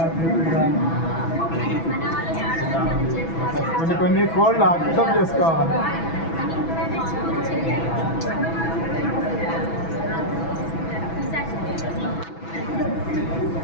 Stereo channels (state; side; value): late; right; 6.1 ms